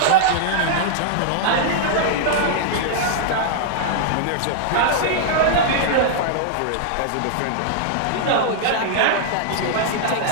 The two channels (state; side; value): different; both; correlation -0.01